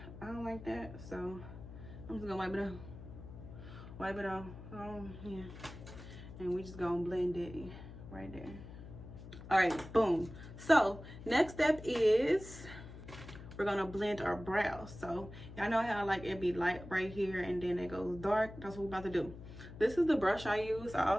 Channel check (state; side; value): noise; left; hum, 14 dB below the sound